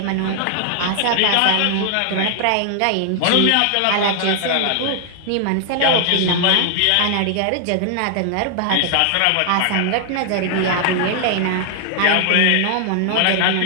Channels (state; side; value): different; both; correlation 0.00